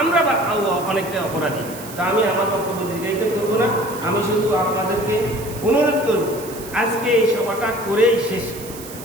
আমরা অনেকটা অপরাধী। তা আমি আমার বক্তব্য দীর্ঘায়িত করবো না, আমি শুধু আপনাদেরকে অনুরোধ করব আজকে এই সভাটা করেই শেষ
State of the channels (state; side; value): noise; right; hiss, 15 dB below the sound